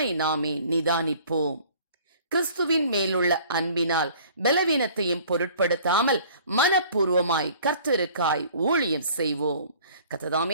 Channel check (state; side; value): inverted; both; correlation -0.51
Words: நாமே நிதானிப்போம். கிறிஸ்துவின் மேலுள்ள அன்பினால் பலவீனத்தையும் பொருட்படுத்தாமல் மனப்பூர்வமாய் கர்த்தருக்காய் ஊழியம் செய்வோம். கர்த்தர்